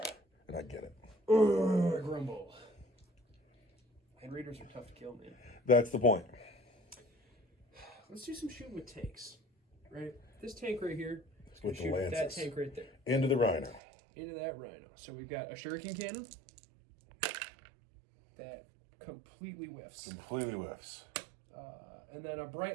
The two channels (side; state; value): left; drops out; at 13.8 s